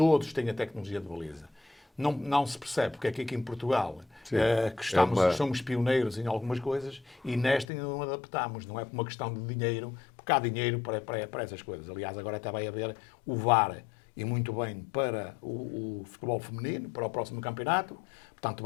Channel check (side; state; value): right; drops out; at 7.7 s